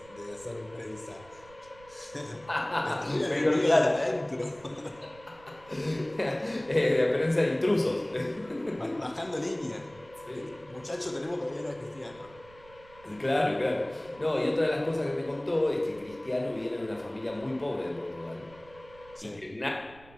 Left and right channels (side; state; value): right; noise; rumble, 24 dB below the sound